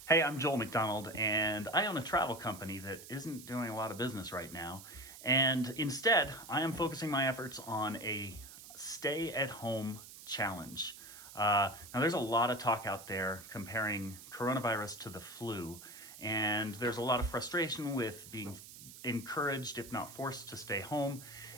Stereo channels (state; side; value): noise; right; hiss, 16 dB below the sound